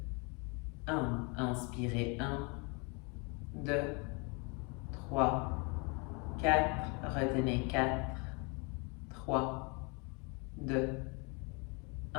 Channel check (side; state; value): right; quieter; 32.0 dB